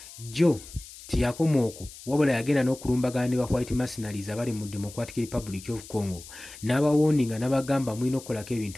jjo tiyakoma okwo, wabula yagenda n'okulumbagana ne ba white mercenaries abali mu Democratic Republic of Congo n'abawooninga n'abagamba mulina okukolako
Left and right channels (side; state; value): left; noise; hiss, 17 dB below the sound